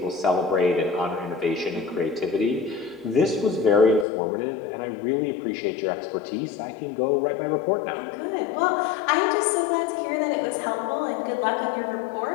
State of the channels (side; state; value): right; drops out; at 4.0 s